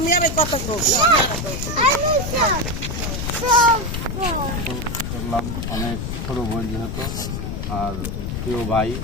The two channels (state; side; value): noise; left; rumble, 4 dB below the sound